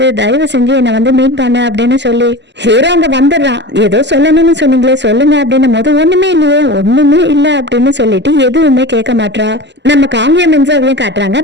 தயவு செஞ்சு என்னை வந்து மீட் பண்ணு அப்படின்னு சொல்லி ஹீரோ அங்க வந்துடுறான். ஏதோ சொல்லணும்னு சொன்னீங்களே சொல்லுங்க அப்படின்னும் போது, ஒண்ணுமே இல்லையே ஒண்ணுமே இல்ல அப்படின்னு சொல்லிட்டு எதுவுமே கேட்க மாட்டா. நம்ம காங்கிய மின்சாவையும் காட்டுறாங்க.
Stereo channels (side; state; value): left; late; 0.51 ms